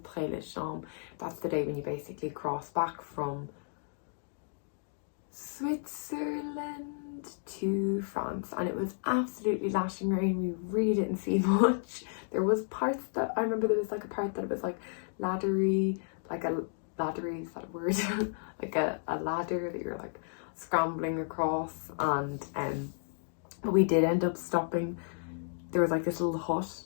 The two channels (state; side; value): silent; right; digital silence